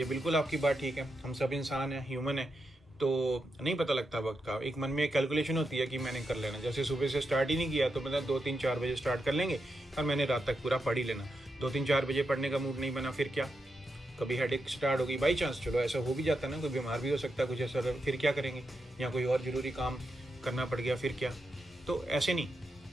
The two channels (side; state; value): both; normal; correlation 0.86